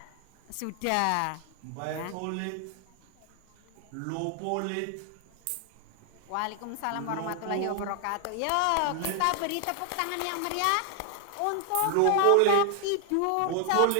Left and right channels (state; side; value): different; both; correlation 0.00